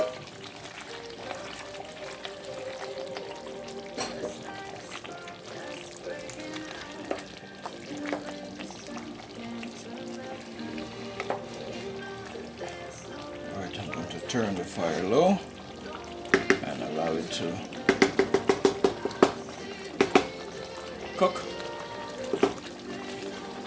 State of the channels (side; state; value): both; identical; correlation 1.00